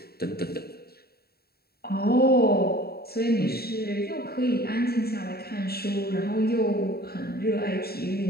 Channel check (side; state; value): right; late; 0.45 ms